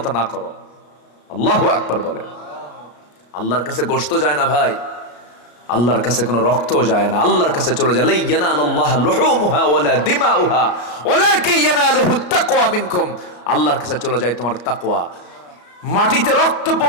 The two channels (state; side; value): late; right; 34 ms